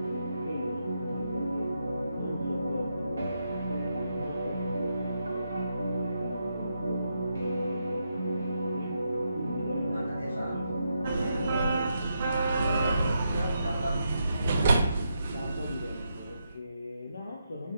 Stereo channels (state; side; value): inverted; both; correlation -0.83